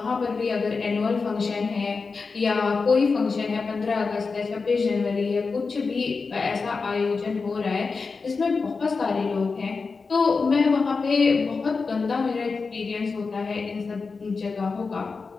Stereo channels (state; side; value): quieter; right; 4.5 dB